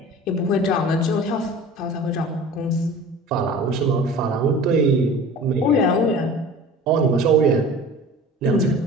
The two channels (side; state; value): both; normal; correlation 0.40